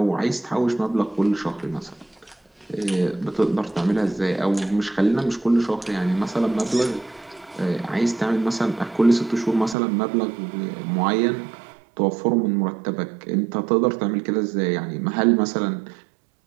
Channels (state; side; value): drops out; left; at 9.8 s